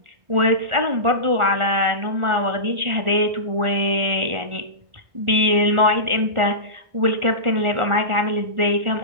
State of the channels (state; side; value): late; left; 1.4 ms